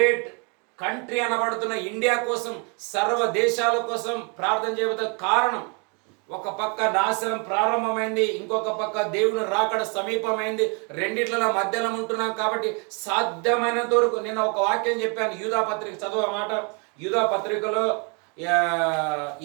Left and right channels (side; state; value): left; quieter; 34.9 dB